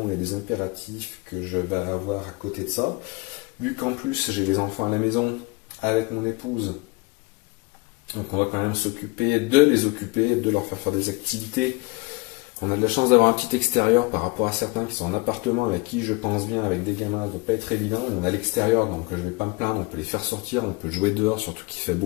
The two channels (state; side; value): quieter; right; 25.1 dB